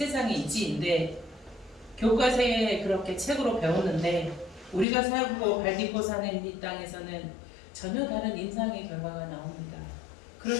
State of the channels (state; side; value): drops out; right; at 4.9 s